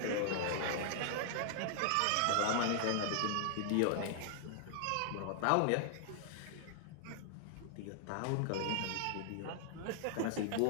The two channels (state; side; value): different; both; correlation -0.01